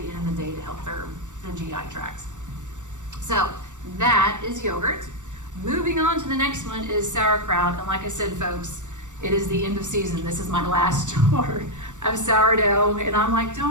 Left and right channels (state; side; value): late; left; 0.85 ms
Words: end of the day to help their GI tracts. So that is yogurt. Moving on to the next one is sauerkraut, and like I said, folks, it is the end of season. This is my last jar of sourdough, and I'm like,